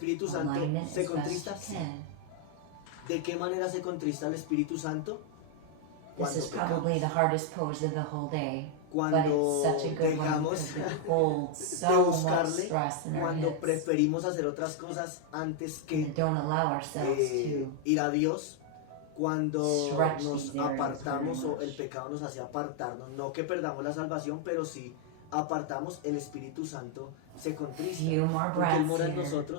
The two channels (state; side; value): different; both; correlation 0.00